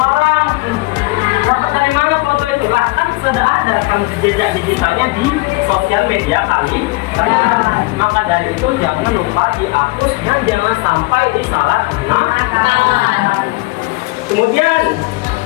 dapat dari mana foto itu? Lah kan sudah ada kan jejak digitalnya di sosial media kali. Maka dari itu jangan lupa dihapus dan jangan sampai disalahgunakan. Kemudian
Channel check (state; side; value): quieter; right; 23.1 dB